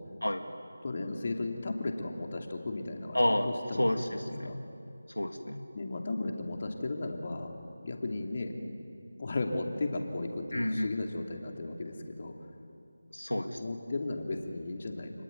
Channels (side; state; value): both; inverted; correlation -0.97